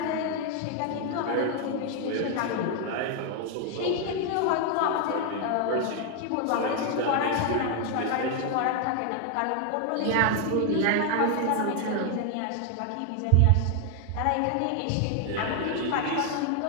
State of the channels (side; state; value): both; different; correlation 0.00